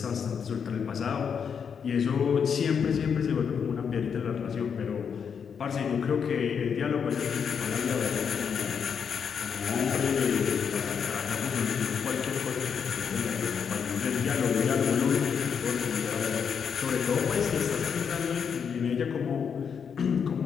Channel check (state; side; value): quieter; right; 6.9 dB